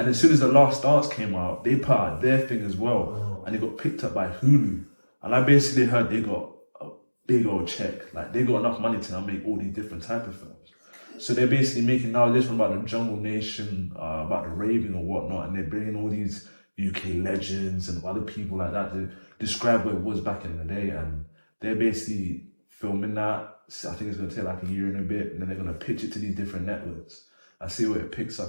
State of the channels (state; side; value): inverted; both; correlation -1.00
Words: as soon as the Last Dance came out, they put out their thing as well, and they got picked up by Hulu. And I basically heard they got a big old check, like they got enough money to now make all these different type of films. So they're basically making now this one about the Jungle Nation, about the raving or whatnot, and they're bringing all these UK legends and other people like that to describe what it was back in the day. And they're basically filming that. So I think it's going to take like a year and a bit, and then they're going to pitch it to these different networks. I see where it picks